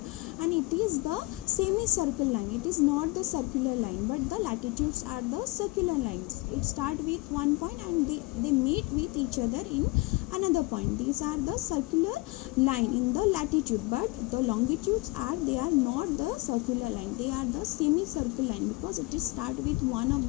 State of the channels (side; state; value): right; quieter; 22.7 dB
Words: and it is the semicircle line. It is not the circular line, but the latitudes are the circular lines. It start with one point and they meet with each other in another point. These are the circular line in the latitude, but the longitudes are, they are not the circular line, they are the semicircle line, because it is start with one of